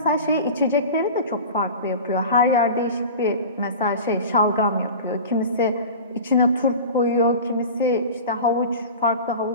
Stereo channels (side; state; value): both; inverted; correlation -0.34